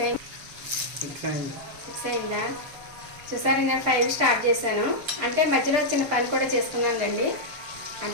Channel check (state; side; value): late; left; 6.6 ms